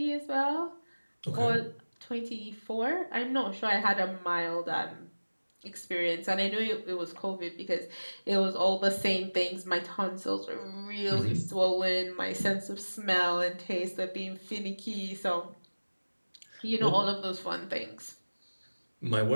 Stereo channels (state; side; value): inverted; both; correlation -1.00